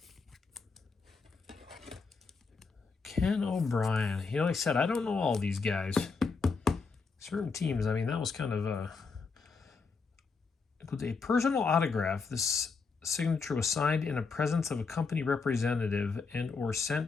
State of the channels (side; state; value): right; quieter; 4.7 dB